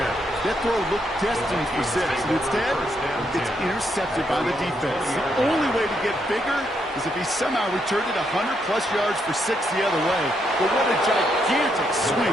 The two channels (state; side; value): normal; both; correlation 0.77